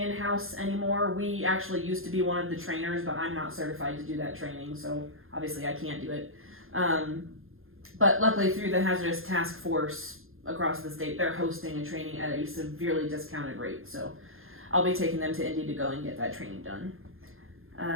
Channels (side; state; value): left; late; 0.60 ms